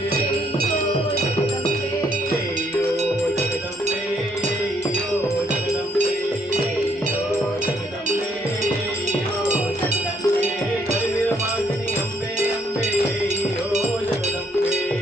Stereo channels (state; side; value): normal; both; correlation 0.69